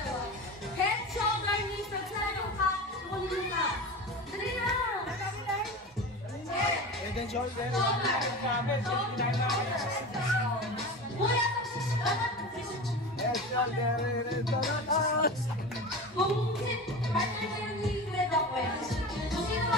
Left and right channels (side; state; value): both; normal; correlation 0.30